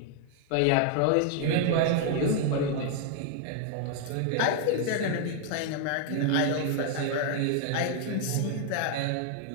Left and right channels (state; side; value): different; both; correlation 0.00